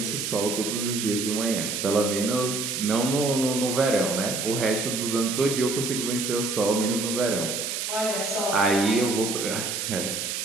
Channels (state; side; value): noise; right; hiss, 3 dB below the sound